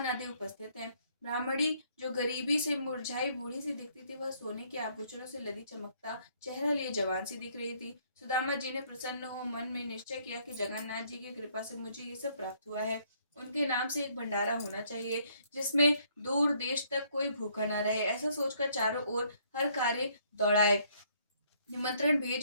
आदि उपस्थित हैं। ब्राह्मणी जो गरीबी से मुरझाई बूढ़ी सी दिखती थी, वह सोने के आभूषणों से लदी चमकता चेहरा लिए जवान सी दिख रही थी। सुदामा जी ने प्रसन्न हो मन में निश्चय किया कि जगन्नाथ जी की कृपा से मुझे ये सब प्राप्त हुआ है। उनके नाम से एक भंडारा होना चाहिए जिसमें दूर देश तक कोई भूखा न रहे। ऐसा सोचकर चारों ओर हर कार्य दौड़ाए। निमंत्रण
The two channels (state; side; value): inverted; both; correlation -0.66